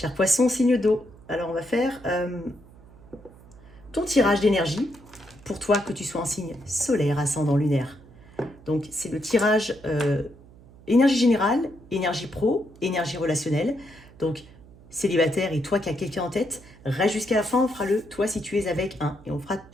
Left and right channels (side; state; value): right; noise; hum, 23 dB below the sound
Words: poisson, signe d'eau. Alors, on va faire ton tirage d'énergie pour toi, que tu sois en signe solaire, ascendant, lunaire. Donc, c'est le tirage énergie générale, énergie pro, énergie relationnelle. Donc, célibataire et toi qui as quelqu'un en tête, reste jusqu'à la fin, on fera le toi si tu es avec un. Et on fera